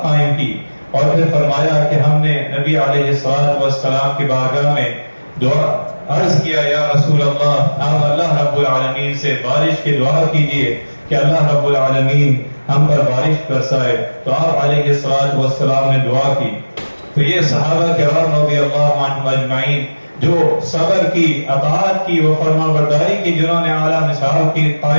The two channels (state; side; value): inverted; both; correlation -1.00